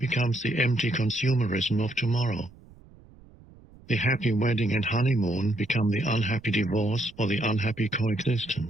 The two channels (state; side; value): noise; right; rumble, 24 dB below the sound